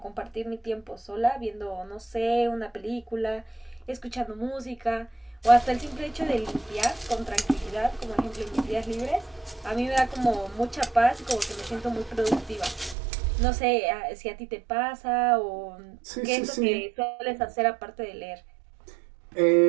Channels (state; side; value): drops out; left; at 13.0 s